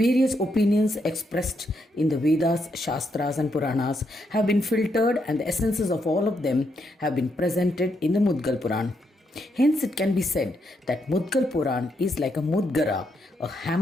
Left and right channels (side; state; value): both; normal; correlation 0.79